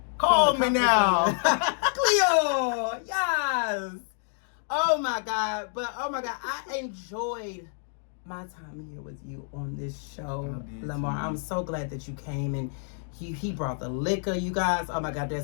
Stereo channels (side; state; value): right; silent; 59 dB below the other